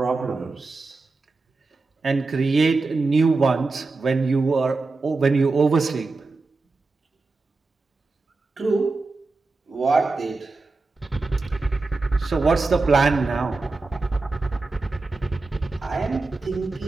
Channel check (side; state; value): left; quieter; 3.7 dB